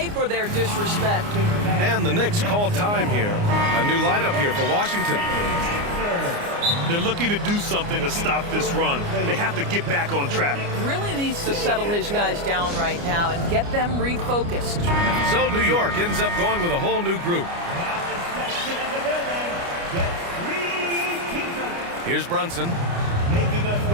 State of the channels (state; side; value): late; left; 29 ms